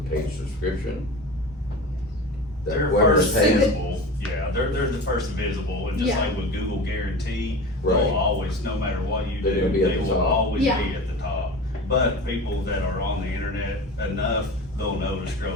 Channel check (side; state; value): both; normal; correlation 0.32